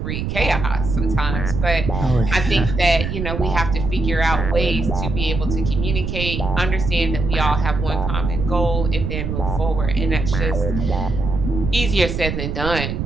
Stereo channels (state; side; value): noise; right; rumble, 3 dB below the sound